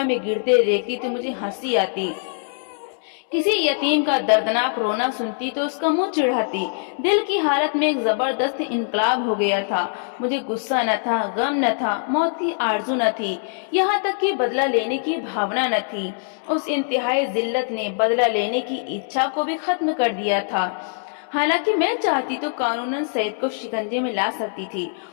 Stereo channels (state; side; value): silent; right; 64 dB below the other